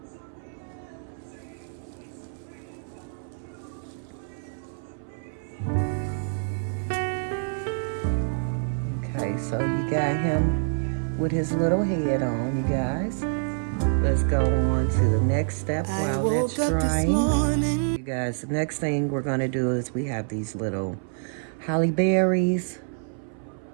Okay, so you got him with his little head on, you guys. Let's go on to the next step while that's drying. You guys, the next thing we're gonna do is we have these little holly berries.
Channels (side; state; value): left; silent; 58 dB below the other